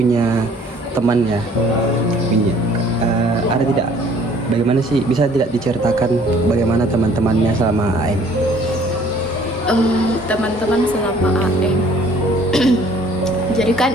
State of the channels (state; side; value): normal; both; correlation 0.56